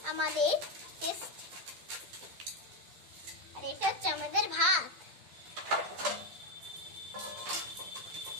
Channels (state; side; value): late; left; 11 ms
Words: আমাদের টেস্ট। আর এটা হচ্ছে আমাদের ভাত।